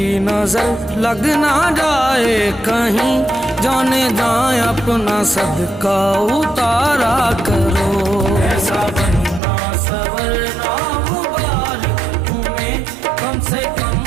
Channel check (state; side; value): drops out; left; at 9.4 s